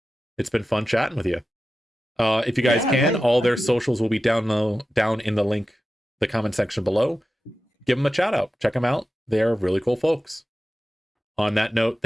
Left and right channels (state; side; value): normal; both; correlation 0.93